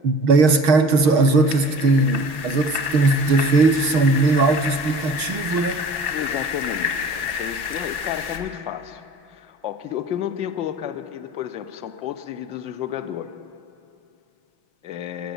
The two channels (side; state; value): left; late; 6.4 ms